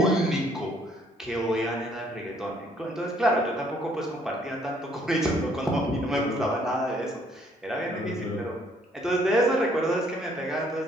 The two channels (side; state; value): both; normal; correlation 0.64